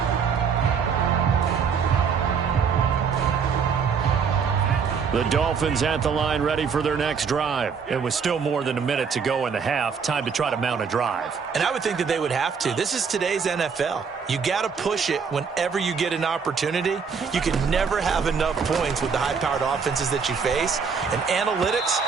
The Dolphins at the line ready for their next drive. It was still more than a minute to go in the half. Time to try to mount a drive. And I would think that they would have to. This is today's NFL. You got to push it whenever you get an opportunity. You can never have enough points with the high-powered offenses that you face. And analytics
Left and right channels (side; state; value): left; quieter; 6.1 dB